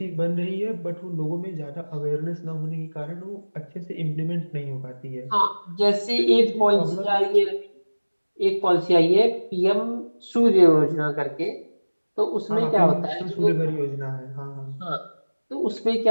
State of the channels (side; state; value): both; inverted; correlation -1.00